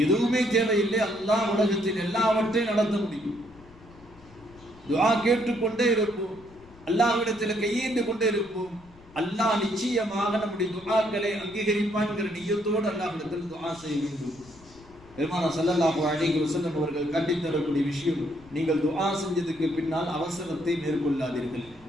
எதுவுமே தேவையில்லை, அல்லாஹ் உலகத்தில் எல்லாவற்றையும் நடத்த முடியும். துஆ கேட்டுக்கொண்டே இருப்போம், அல்லாஹ்விடத்தில் கையேந்து கொண்டே இருப்போம். அல்லாஹ் நிச்சயமாக நம்முடைய துஆக்களை அங்கீகரிப்பான்கிற நியத்தோடு அல்லாஹ்விடத்தில் துஆ செய்ய வேண்டும். பெருமானார் ஸல்லல்லாஹு அலைஹி வஸல்லம் அவர்கள் கண்டித்தரக்கூடிய விஷயம், நீங்கள் துஆ செஞ்சதுக்கு பின்னால் அவசரத்தை மேற்கொள்ளாதீர்கள்,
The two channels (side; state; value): left; noise; rumble, 24 dB below the sound